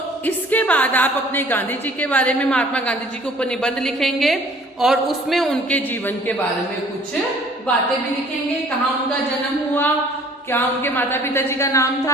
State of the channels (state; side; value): normal; both; correlation 0.54